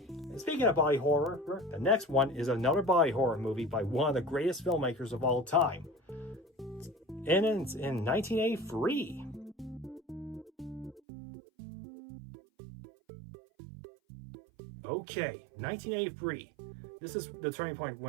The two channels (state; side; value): drops out; left; at 11.0 s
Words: speaking of body horror, the next one is another body horror movie by one of the greatest filmmakers of all time. And it's in 1983. Okay, 1983. This is the turning point